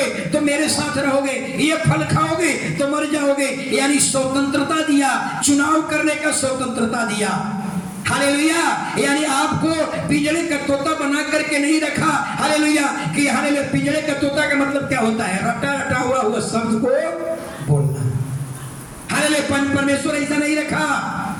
तो मेरे साथ रहोगे, ये फल खाओगे तो मर जाओगे, यानी स्वतंत्रता दिया, चुनाव करने का स्वतंत्रता दिया। हालेलुया। यानी आपको पिंजरे का तोता बना करके नहीं रखा। हालेलुया। कि हालेलुया, पिंजरे का तोता का मतलब क्या होता है? रटा रटा हुआ शब्द को बोलना। हालेलुया। परमेश्वर ऐसा नहीं रखा।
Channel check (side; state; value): both; identical; correlation 1.00